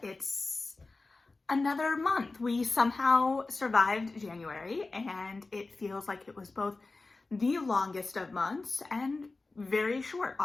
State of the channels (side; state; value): right; quieter; 3.5 dB